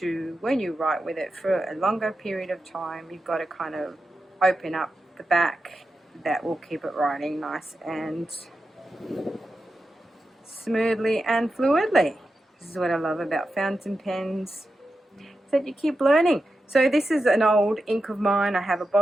to, when you write with it for a longer period of time, you've got to kind of open up the back. That will keep it writing nice and smoothly and fluidly. This is what I love about fountain pens, is that you keep learning. So this is an old ink of mine. I have a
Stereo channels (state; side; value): normal; both; correlation 0.90